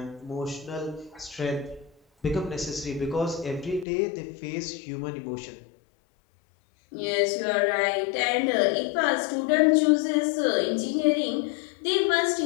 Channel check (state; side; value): drops out; right; at 3.9 s